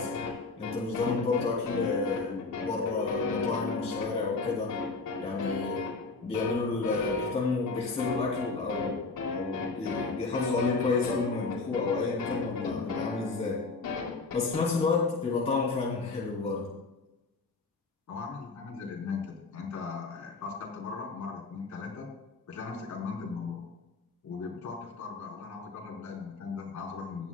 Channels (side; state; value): right; quieter; 3.9 dB